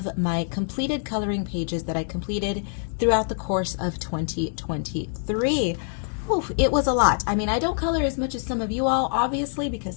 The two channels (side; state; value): right; silent; 62 dB below the other